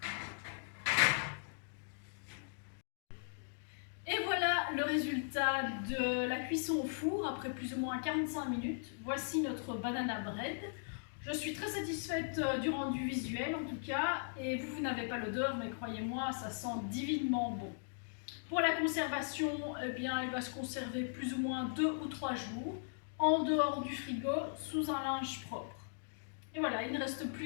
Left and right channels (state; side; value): silent; right; digital silence